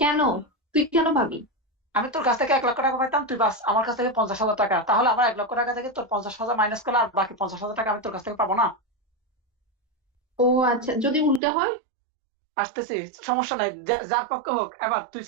তুই কেন পাবি? আমি তোর কাছ থেকে 1 লক্ষ টাকা পাইতাম, তুই বাস আমার কাছ থেকে 50,000 টাকা, তাহলে আমার 1 লক্ষ টাকা থেকে তোর 50,000 মাইনাস করলে আর বাকি 50,000 টাকা আমি তোর কাছ থেকে পাবো না? ও আচ্ছা, যদি উল্টা হয়? আসতেছি, সমস্যা নাই, যার পক্ষে হোক। এবার তুই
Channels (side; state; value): left; drops out; at 11.4 s